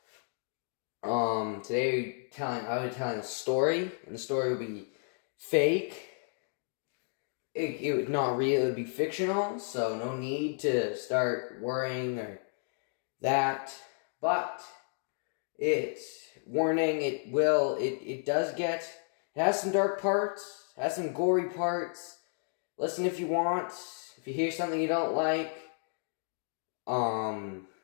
Today I'll be telling a story, and the story will be fake. It would not real, it would be fictional, so no need to start worrying or that. But it has some dark parts, has some gory parts. Listen if you want. If you hear something you don't like, then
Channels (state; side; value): silent; right; 56 dB below the other